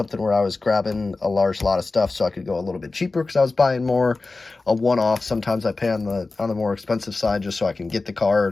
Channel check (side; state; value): right; quieter; 3.6 dB